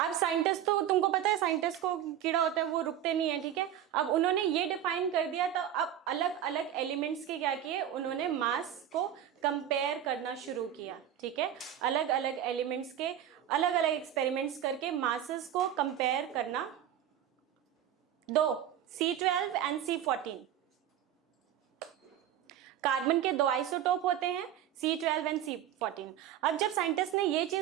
साइंटिस्ट तो तुमको पता है, साइंटिस्ट को कीड़ा होता है वो रुकते नहीं है, ठीक है। अब उन्होंने ये डिफाइन कर दिया, तो अब अलग अलग एलिमेंट्स के क्या किए, उन्होंने मास को कंपेयर करना शुरू किया, ठीक है। अलग अलग एलिमेंट्स के अलग अलग एक्सपेरिमेंट्स करके मासेस को कंपेयर करना, दो C12 एंड C14। कार्बन के 2 आइसोटोप होते हैं, C12 एंड C14। अब जब साइंटिस्ट ने ये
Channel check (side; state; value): left; quieter; 10.6 dB